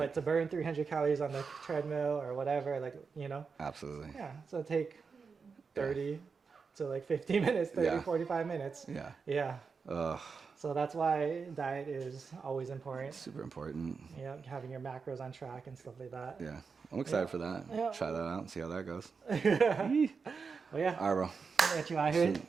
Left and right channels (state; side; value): quieter; left; 5.2 dB